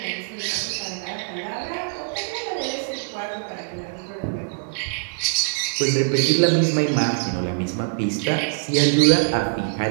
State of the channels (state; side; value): silent; left; digital silence